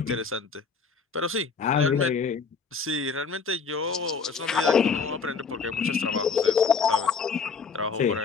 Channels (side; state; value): right; quieter; 5.4 dB